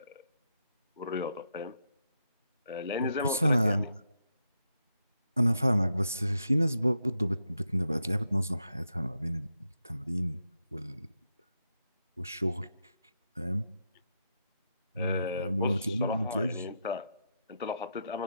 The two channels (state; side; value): inverted; both; correlation -0.82